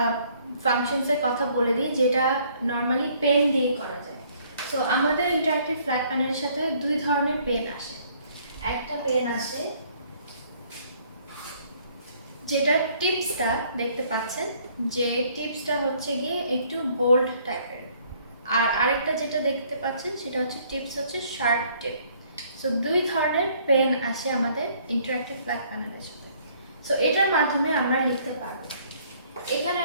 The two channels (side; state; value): both; inverted; correlation -0.62